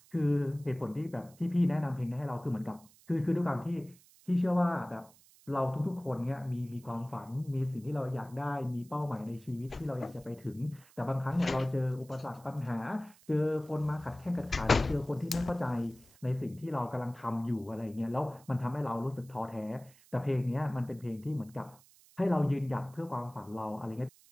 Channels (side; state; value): right; noise; hiss, 26 dB below the sound